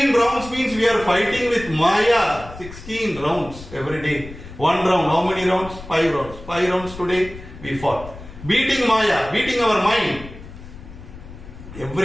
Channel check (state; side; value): noise; left; rumble, 15 dB below the sound